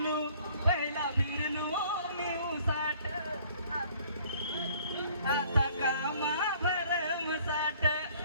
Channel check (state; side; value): inverted; both; correlation -0.57